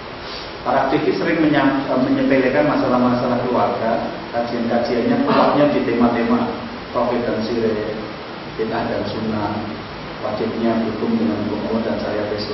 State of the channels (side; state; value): both; identical; correlation 1.00